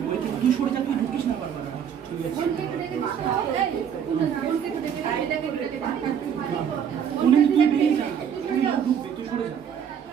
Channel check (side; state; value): left; quieter; 8.2 dB